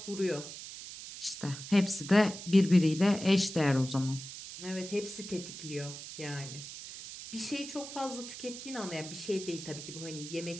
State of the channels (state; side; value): noise; right; hiss, 11 dB below the sound